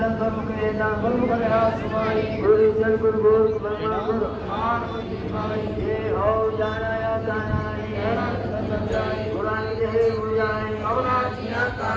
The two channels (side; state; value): both; identical; correlation 1.00